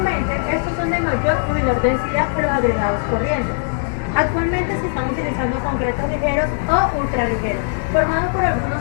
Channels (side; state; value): right; silent; digital silence